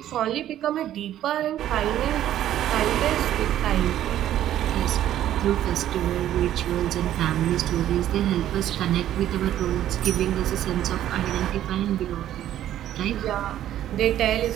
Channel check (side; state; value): left; quieter; 12.1 dB